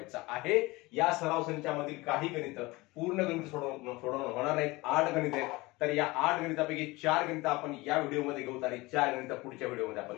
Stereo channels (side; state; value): right; quieter; 22.0 dB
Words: आहे. या सराव संचामधील काही गणित पूर्ण गणित सोडवणं होणार नाहीत. 8 गणित आहेत. तर या 8 गणितापैकी 4 गणित आपण या व्हिडिओमध्ये घेऊ आणि 4 गणित पुढच्या व्हिडिओमध्ये